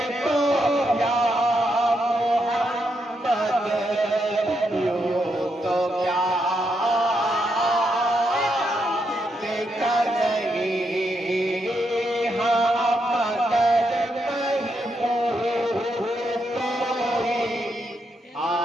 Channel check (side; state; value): both; normal; correlation 0.80